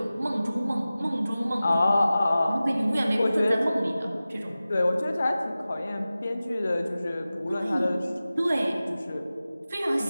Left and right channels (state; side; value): inverted; both; correlation -0.96